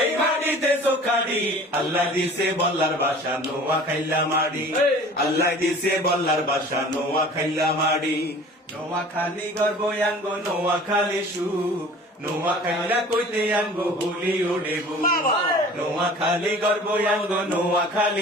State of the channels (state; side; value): normal; both; correlation 0.45